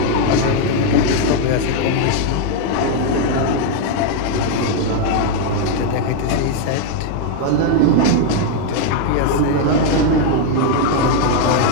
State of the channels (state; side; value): different; both; correlation 0.00